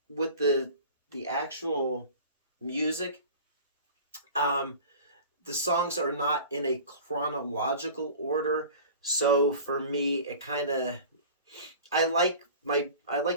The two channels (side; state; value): both; inverted; correlation -0.40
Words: with the actual music, um, the songs are not in a chronological order. So for me, it kind of I like